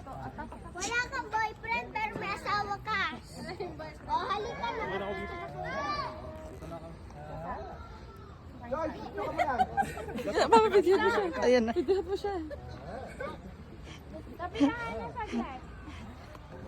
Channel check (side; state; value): both; identical; correlation 1.00